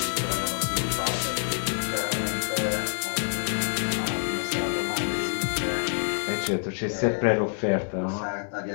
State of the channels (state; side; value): silent; right; 60 dB below the other